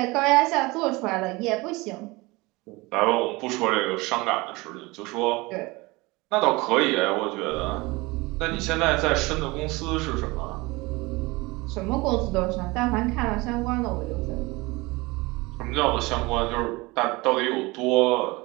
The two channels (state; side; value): quieter; left; 23.3 dB